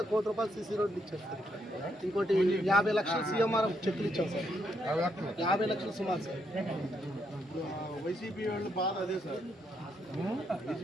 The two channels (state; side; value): normal; both; correlation 0.76